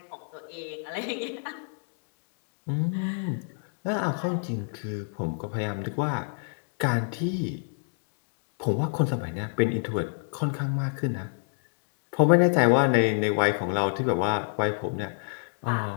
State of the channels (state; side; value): silent; right; digital silence